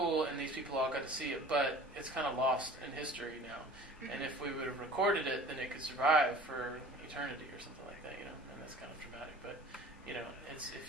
and these people all got to see it, but it's kind of lost in history now. And if we would have recorded it, then it could survive for eternity or something like that, and that's kind of dramatic. But, it's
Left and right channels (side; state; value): both; normal; correlation 0.44